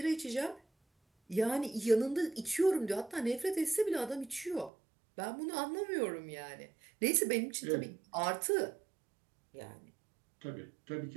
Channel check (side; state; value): left; drops out; at 4.7 s